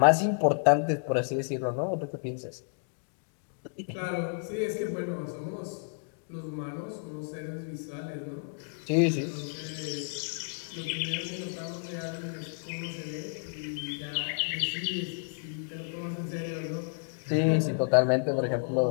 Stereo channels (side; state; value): right; silent; digital silence